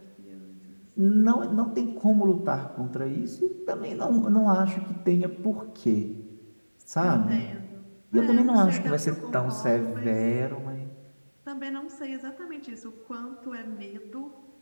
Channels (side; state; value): both; inverted; correlation -1.00